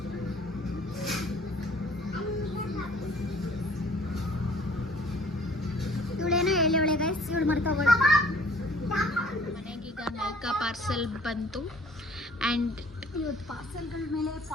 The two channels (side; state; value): both; normal; correlation 0.54